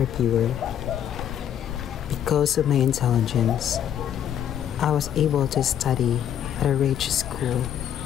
pure. Because of my intelligence, I was able to study at a rich school,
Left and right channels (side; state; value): right; quieter; 9.8 dB